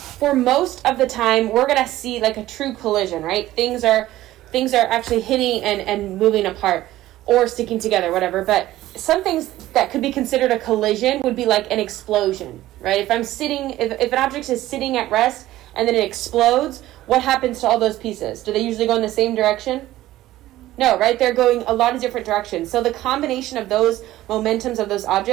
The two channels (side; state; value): left; quieter; 15.2 dB